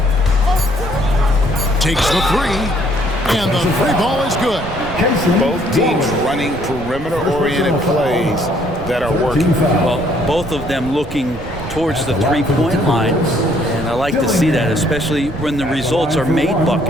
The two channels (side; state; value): right; noise; rumble, 12 dB below the sound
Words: Takes the three, and the three ball is good. Both teams running perimeter-oriented plays that are working. Well, both of them looking towards the three-point line, and I like to see that, especially when the results are made